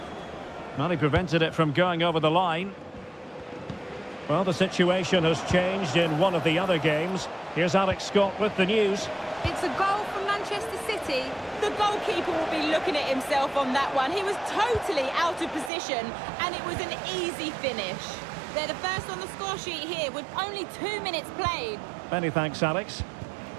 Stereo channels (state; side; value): drops out; left; at 15.7 s